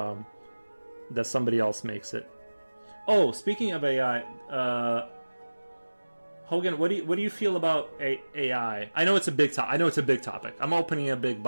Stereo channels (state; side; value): inverted; both; correlation -1.00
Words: that somebody else makes it. Oh, speaking of AI, Hogan, what do you feel about AI? I know it's a big topic. I'm opening a big